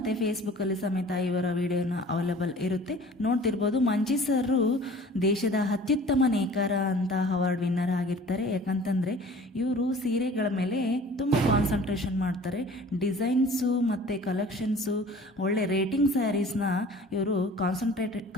ಫೇಸ್ಬುಕ್ಕಲ್ಲಿ ಸಮೇತ ಇವರ ವಿಡಿಯೋನ ಅವೈಲೇಬಲ್ ಇರುತ್ತೆ. ನೋಡ್ತಿರ್ಬೋದು, ಮಂಜಿ ಸರು ದೇಶದ ಅತ್ಯುತ್ತಮ ನೇಕಾರ ಅಂತ ಅವಾರ್ಡ್ ವಿನ್ನರ್ ಆಗಿರ್ತಾರೆ. ಯಾಕಂತಂದರೆ ಇವರು ಸೀರೆಗಳ ಮೇಲೆ ತುಂಬ ಕಾನ್ಸಂಟ್ರೇಷನ್ ಮಾಡ್ತಾರೆ. ಡಿಸೈನ್ಸು ಮತ್ತು ಕಲೆಕ್ಷನ್ಸು, ಒಳ್ಳೆ ರೇಟಿಂಗ್ ಸ್ಯಾರೀಸ್ನ ಇವರು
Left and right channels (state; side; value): normal; both; correlation 0.46